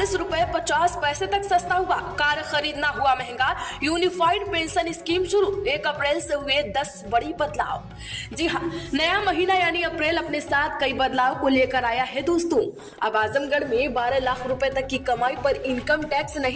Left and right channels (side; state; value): both; identical; correlation 1.00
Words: रुपए 50 पैसे तक सस्ता हुआ। कार खरीदना हुआ महंगा। यूनिफाइड पेंशन स्कीम शुरू। 1 अप्रैल से हुए 10 बड़ी बदलाव। जी हाँ, नया महीना यानी अप्रैल अपने साथ कई बदलाव को लेकर आया है दोस्तों। अब आजमगढ़ में 12 लाख रुपए तक की कमाई पर इनकम टैक्स